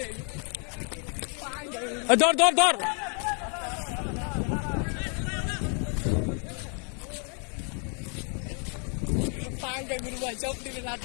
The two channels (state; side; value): quieter; right; 40.0 dB